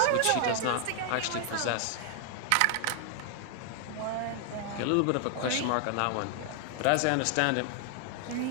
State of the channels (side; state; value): both; different; correlation 0.00